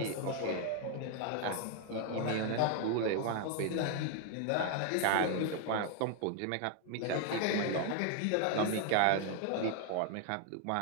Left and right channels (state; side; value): different; both; correlation 0.01